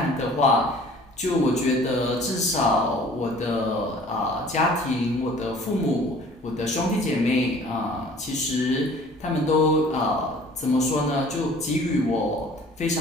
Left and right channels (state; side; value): normal; both; correlation 0.50